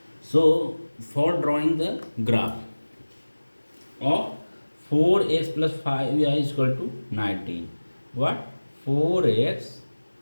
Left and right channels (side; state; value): both; inverted; correlation -1.00